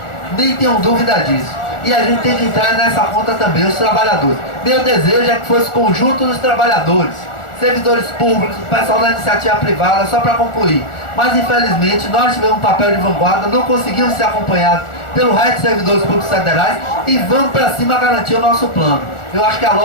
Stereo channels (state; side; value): late; right; 1.4 ms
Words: Nem tenham dúvida disso. E a gente tem que entrar nessa conta também, os trabalhadores. Meu desejo é que fosse o conjunto dos trabalhadores, servidores públicos, o pessoal da iniciativa privada, só para concluir. Mas infelizmente nós tivemos um papel de vanguarda, não conseguimos ser acompanhados pelo resto dos servidores públicos federais e vamos para cima garantir o nosso plano. Eu acho que a